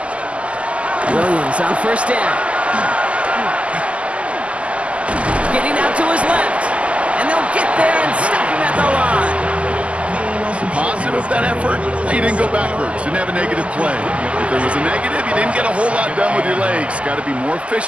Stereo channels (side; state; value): left; late; 0.059 ms